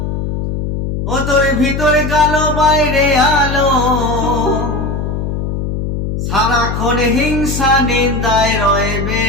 ও তোর ভিতরে গেল বাইরে আলো সারাক্ষণ হিংসা নিন্দায় রয়ে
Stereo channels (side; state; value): left; noise; hum, 3 dB below the sound